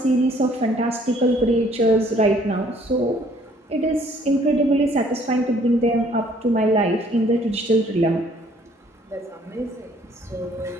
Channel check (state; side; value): normal; both; correlation 0.60